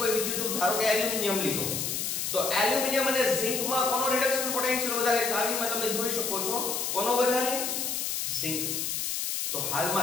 વિદ્યુત ધારો કે એલ્યુમિનિયમ લીધો, તો એલ્યુમિનિયમ અને ઝિંકમાં કોનો રિડક્શન પોટેન્શિયલ વધારે? ચાવીમાં તમે જોઈ શકો છો કોનો વધારે? ઝિંક. તો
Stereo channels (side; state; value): left; noise; hiss, 1 dB below the sound